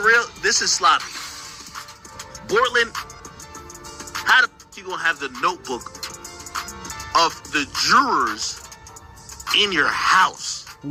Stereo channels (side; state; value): both; identical; correlation 1.00